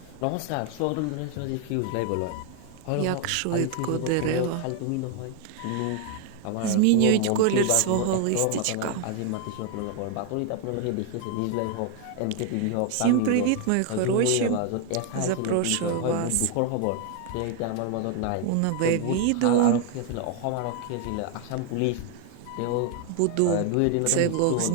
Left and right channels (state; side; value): different; both; correlation 0.00